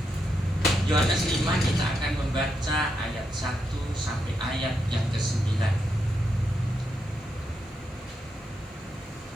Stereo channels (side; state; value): both; normal; correlation 0.83